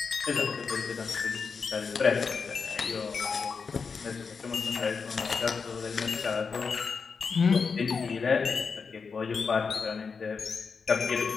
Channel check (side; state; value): right; quieter; 5.3 dB